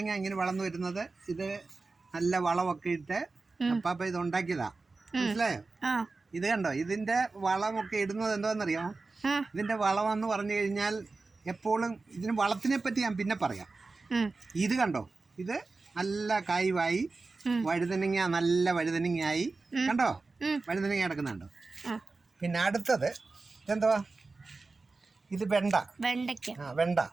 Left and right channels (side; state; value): left; quieter; 3.8 dB